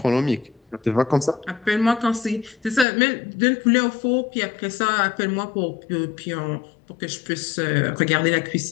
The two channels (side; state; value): right; drops out; at 2.9 s